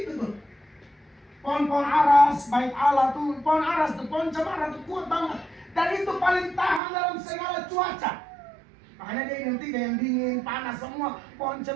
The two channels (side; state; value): left; drops out; at 6.8 s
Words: itu tuh. Pohon-pohon aras, baik Allah tuh, pohon aras tuh, pohon cemara tuh kuat banget. Dan itu paling tahan dalam segala cuaca. Makanya dia identik dengan dingin, panas, semua pohon